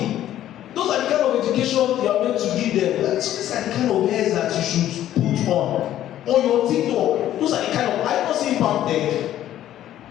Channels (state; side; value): quieter; right; 12.3 dB